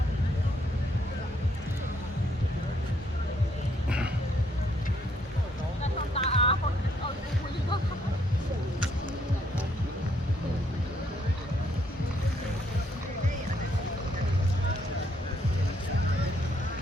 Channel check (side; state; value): both; normal; correlation 0.71